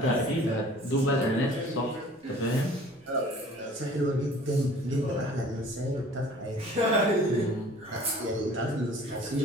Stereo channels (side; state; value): both; normal; correlation 0.49